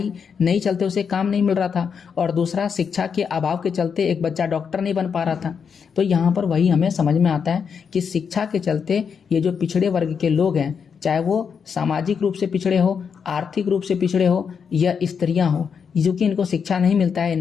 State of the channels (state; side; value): quieter; right; 6.5 dB